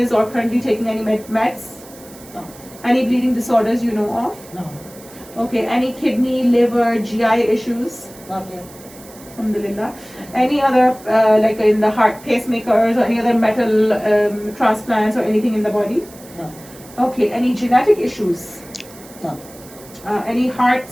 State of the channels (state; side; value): noise; right; hiss, 21 dB below the sound